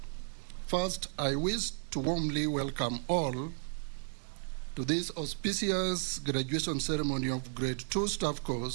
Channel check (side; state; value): left; silent; 55 dB below the other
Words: first I wish to warmly welcome all to this auspicious graduation ceremony of Grade 2 Staff